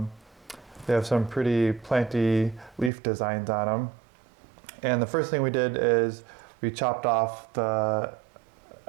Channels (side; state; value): left; drops out; at 2.9 s